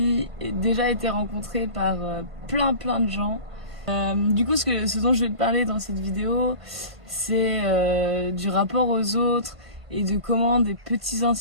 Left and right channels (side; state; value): left; late; 1.5 ms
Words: déjà été rencontré par plein de gens. Du coup, ce dont je vais te parler dans cette vidéo, c'est du rapport aux autres et de comment des petits